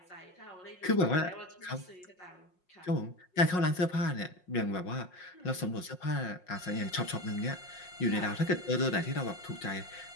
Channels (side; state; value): right; late; 5.5 ms